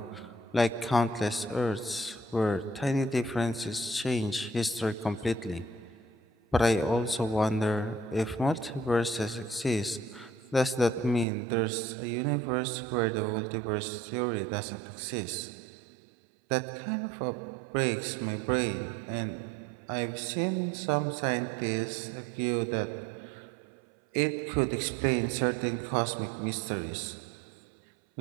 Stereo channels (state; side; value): drops out; left; at 11.2 s